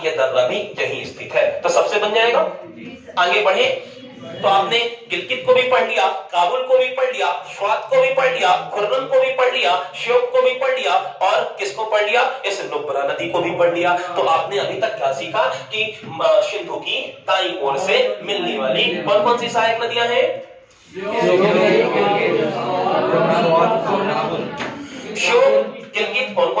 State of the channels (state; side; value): identical; both; correlation 1.00